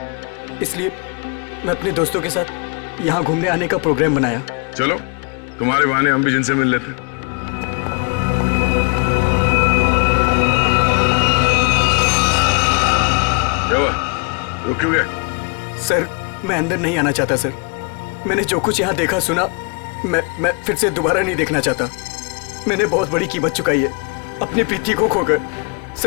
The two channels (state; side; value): quieter; right; 33.5 dB